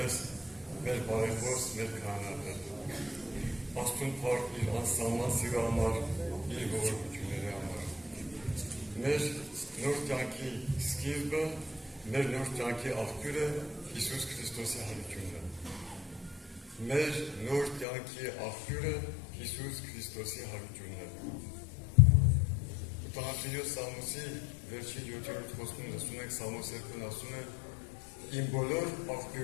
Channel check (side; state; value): right; drops out; at 17.9 s